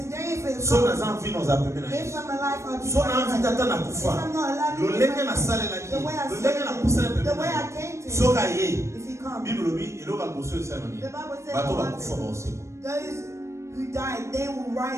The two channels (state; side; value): late; left; 0.14 ms